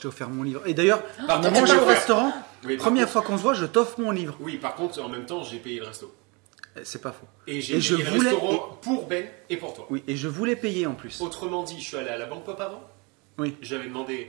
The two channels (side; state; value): left; quieter; 29.7 dB